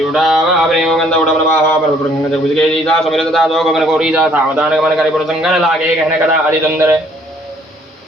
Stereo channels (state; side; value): normal; both; correlation 0.62